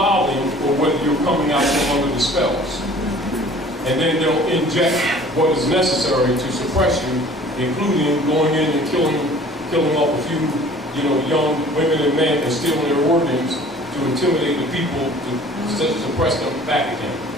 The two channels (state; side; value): normal; both; correlation 0.49